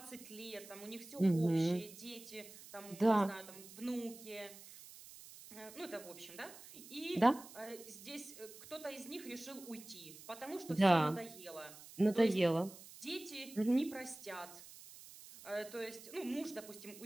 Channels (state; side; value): noise; right; hiss, 17 dB below the sound